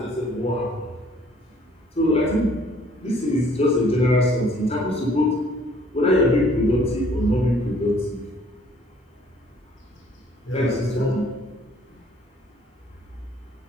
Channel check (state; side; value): normal; both; correlation 0.58